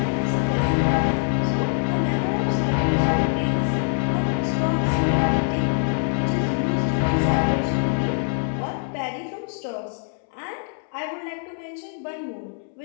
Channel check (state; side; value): silent; right; 63 dB below the other